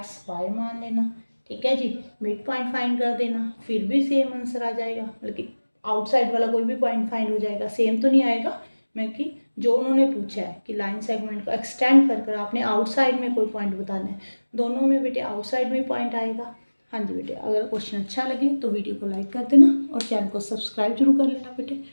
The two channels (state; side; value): inverted; both; correlation -1.00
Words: y मान लेना, ठीक है जी। मिड पॉइंट फाइंड कर देना, फिर भी सेम आंसर आ जाएगा, बल्कि आउटसाइड वाला कोई भी पॉइंट फाइंड हो जाएगा, सेम तो नहीं आएगा, मैं कि जो उन्होंने पूछा है कि लाइन सेगमेंट को एक्सटेंड कर कर आपने आउटसाइड में कोई पॉइंट बताना है, दोनों में बेटे आउटसाइड में पॉइंट आएगा। हाँ जी बेटे, अगर क्वेश्चन अच्छा लगे तो वीडियो को लाइक कर देना और चैनल को सब्सक्राइब जरूर कर लेना बेटे,